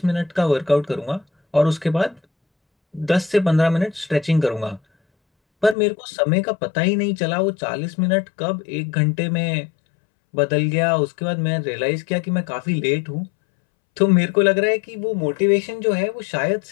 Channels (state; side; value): drops out; right; at 5.8 s